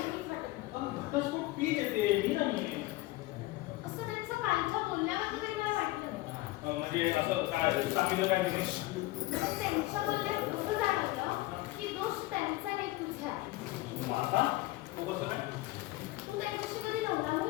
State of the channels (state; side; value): quieter; right; 19.0 dB